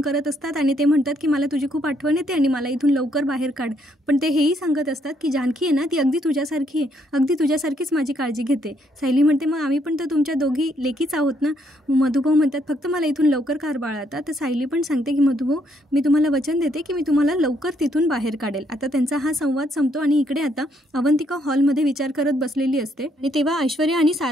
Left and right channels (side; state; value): both; normal; correlation 0.72